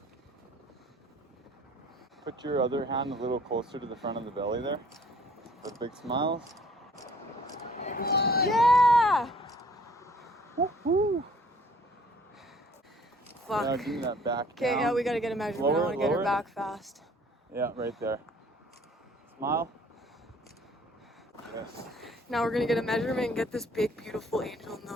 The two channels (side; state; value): both; normal; correlation 0.56